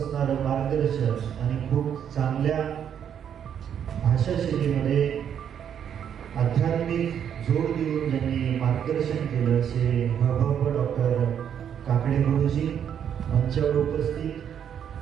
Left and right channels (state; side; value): quieter; left; 8.7 dB